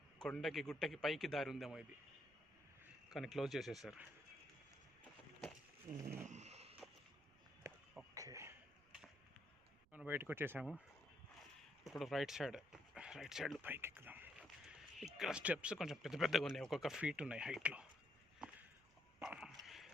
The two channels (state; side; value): noise; right; rumble, 28 dB below the sound